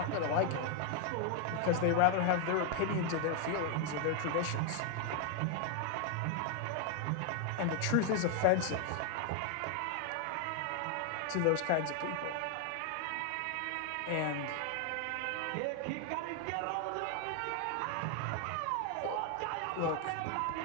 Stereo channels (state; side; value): different; both; correlation 0.01